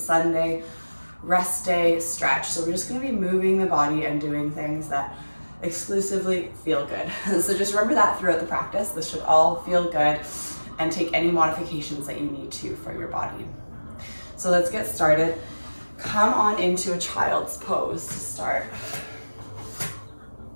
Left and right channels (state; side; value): inverted; both; correlation -1.00